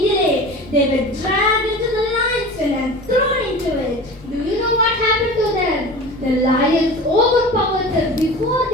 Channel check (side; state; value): left; noise; rumble, 22 dB below the sound